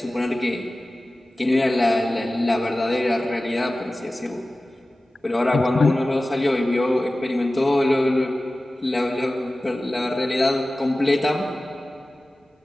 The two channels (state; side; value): normal; both; correlation 0.96